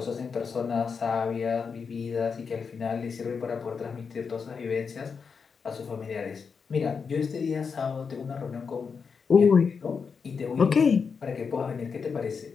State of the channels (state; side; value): quieter; right; 5.7 dB